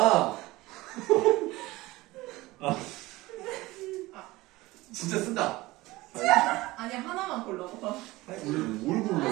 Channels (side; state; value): left; quieter; 19.7 dB